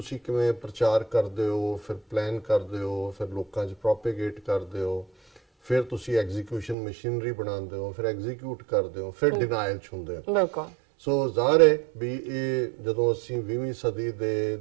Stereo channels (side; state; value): left; drops out; at 6.8 s